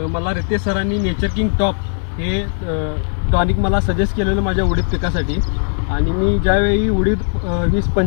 मला रितेश सरांनी नेचर किंग टॉप हे टॉनिक मला सजेस्ट केलेलं माझ्या उडीद पिकासाठी. आणि मी ज्यावेळी उडीद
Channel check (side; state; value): right; silent; 59 dB below the other